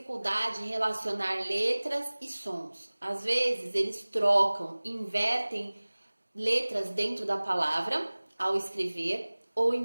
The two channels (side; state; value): both; inverted; correlation -1.00